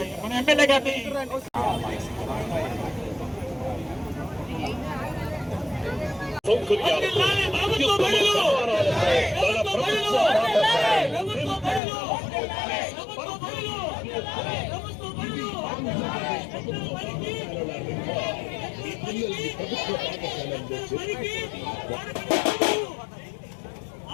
మన ఎమ్మెల్యే గారిని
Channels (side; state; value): right; drops out; at 11.8 s